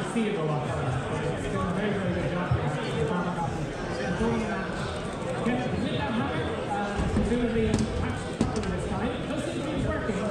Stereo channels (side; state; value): both; identical; correlation 1.00